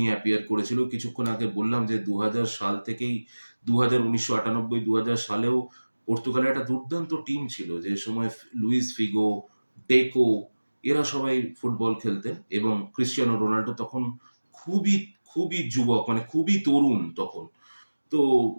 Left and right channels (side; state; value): both; inverted; correlation -1.00